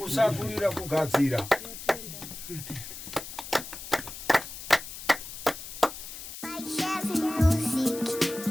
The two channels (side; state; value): left; noise; hiss, 11 dB below the sound